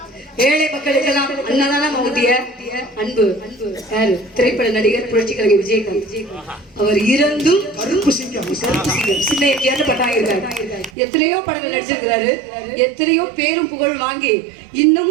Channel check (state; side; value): drops out; left; at 10.9 s